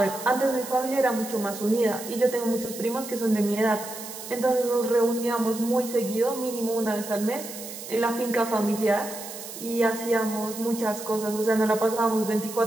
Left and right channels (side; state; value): right; noise; hiss, 11 dB below the sound